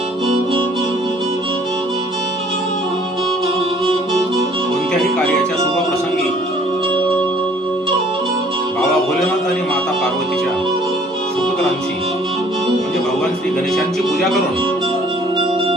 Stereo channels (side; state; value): both; normal; correlation 0.56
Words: कोणत्याही कार्याच्या शुभप्रसंगी बाबा भोलेनाथ आणि माता पार्वतीच्या सुपुत्रांची म्हणजे भगवान श्री गणेशांची पूजा करून